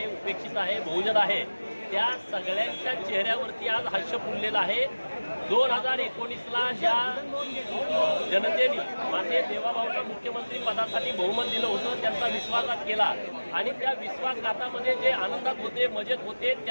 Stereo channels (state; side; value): inverted; both; correlation -1.00